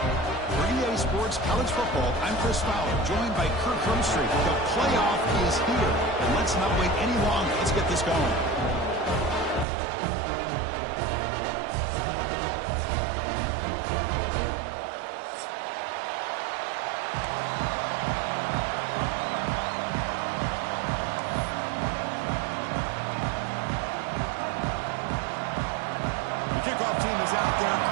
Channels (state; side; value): drops out; left; at 9.7 s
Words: For EA Sports College Football, I'm Chris Fowler, joined by Kirk Hermstreet. The playoff is here, and let's not wait any longer. Let's get this going. Kickoff team is out there.